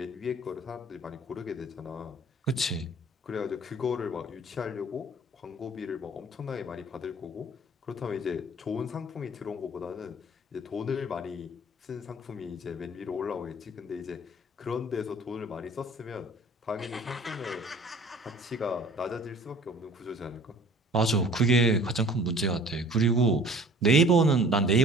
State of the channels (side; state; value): both; normal; correlation 0.49